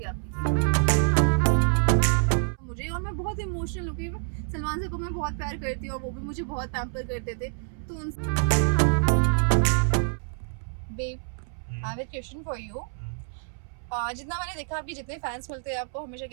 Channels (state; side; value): silent; left; 60 dB below the other